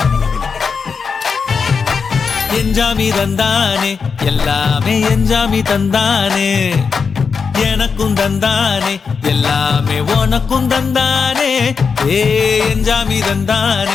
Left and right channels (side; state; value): right; quieter; 5.5 dB